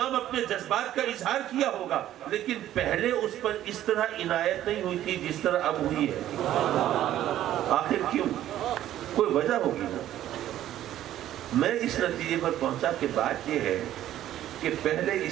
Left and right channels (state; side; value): quieter; left; 12.6 dB